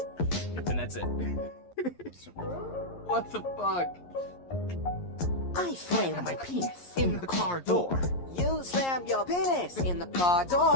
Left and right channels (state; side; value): late; right; 11 ms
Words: And that's it. What the fuck? I slammed my penis in the car door. You slammed your penis in the car